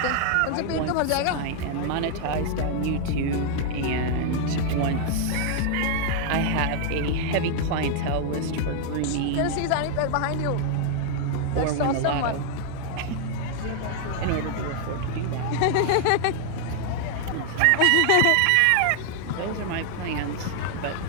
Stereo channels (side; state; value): both; different; correlation 0.00